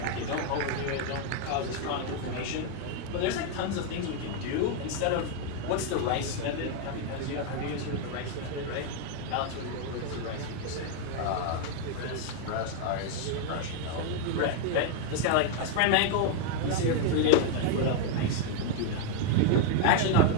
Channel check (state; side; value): different; both; correlation 0.00